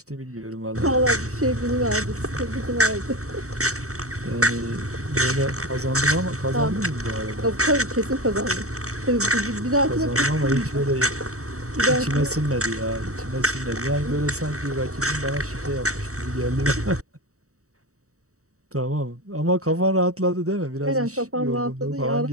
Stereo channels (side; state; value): left; late; 0.65 ms